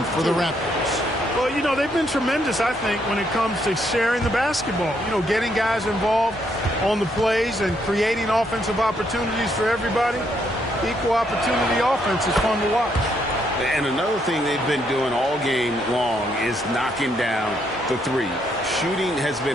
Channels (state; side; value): normal; both; correlation 0.74